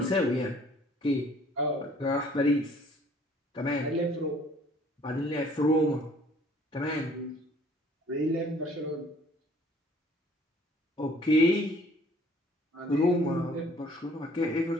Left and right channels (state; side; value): normal; both; correlation 0.57